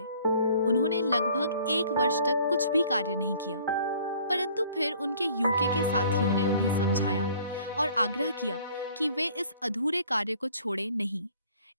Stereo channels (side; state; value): both; inverted; correlation -0.55